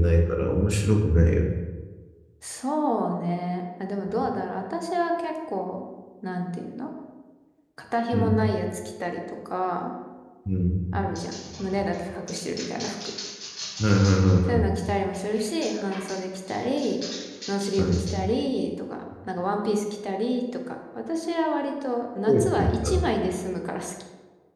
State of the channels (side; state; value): both; identical; correlation 1.00